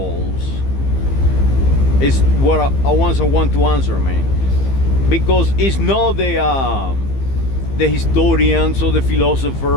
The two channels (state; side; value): late; right; 15 ms